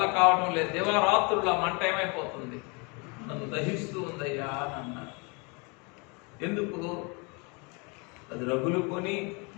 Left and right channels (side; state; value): right; quieter; 31.0 dB